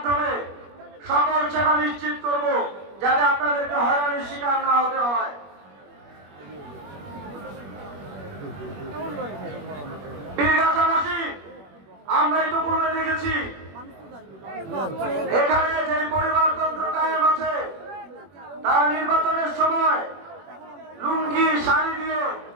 সকল সেবা নিশ্চিত করব, যাতে আপনাদেরকে হয়রানির শিকার না হতে হয়। পীরগাছাবাসী, আমরা ইতিপূর্বে দেখেছি এখানে যে পরিবারতন্ত্র কায়েম আছে, তারা নির্বাচনের সময় লুঙ্গি শাড়ি দিয়ে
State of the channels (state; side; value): late; left; 21 ms